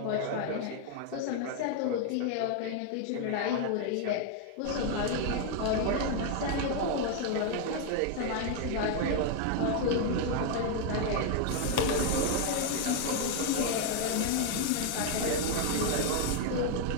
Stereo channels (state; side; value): different; both; correlation 0.01